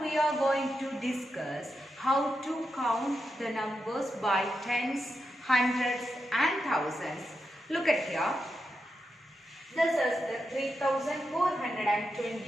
we are going to discuss how to count the numbers by tens, hundreds and thousands. Look at here. This is the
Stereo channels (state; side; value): normal; both; correlation 0.87